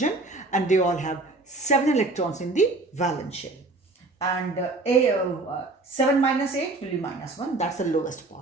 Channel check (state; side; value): quieter; left; 3.1 dB